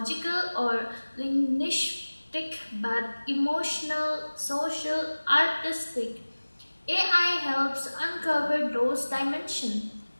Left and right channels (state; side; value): inverted; both; correlation -1.00